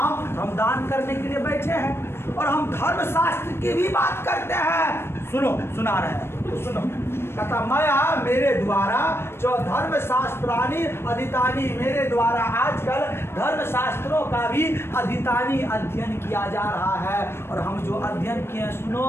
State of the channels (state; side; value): late; right; 0.12 ms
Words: हम दान करने के लिए बैठे हैं और हम धर्म शास्त्र की भी बात करते हैं। सुनो, सुना रहे हैं तो सुनो। कहता मया मेरे द्वारा जो धर्म शास्त्रानी अधितानी, मेरे द्वारा आजकल धर्म शास्त्रों का भी अधितानी अध्ययन किया जा रहा है। और हम जो अध्ययन किए, सुनो